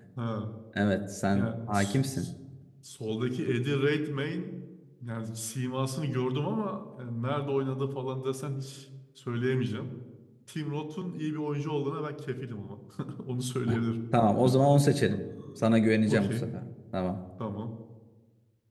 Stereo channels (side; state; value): both; identical; correlation 1.00